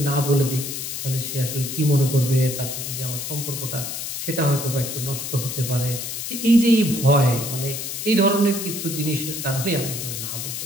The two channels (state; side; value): noise; left; hiss, 5 dB below the sound